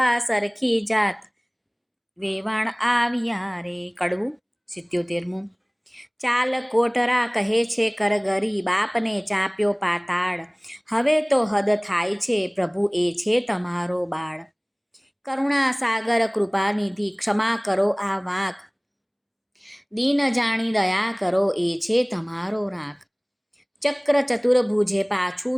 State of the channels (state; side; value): identical; both; correlation 1.00